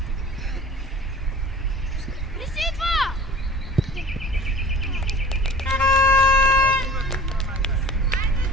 Не си идва!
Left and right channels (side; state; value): both; normal; correlation 0.44